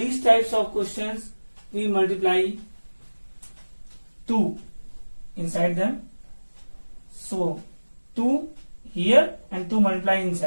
types of questions, we multiply 2 inside them. So 2 here and 2 multiply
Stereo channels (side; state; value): both; inverted; correlation -1.00